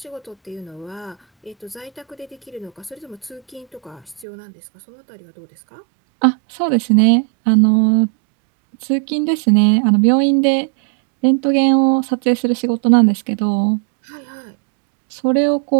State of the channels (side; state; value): left; drops out; at 4.2 s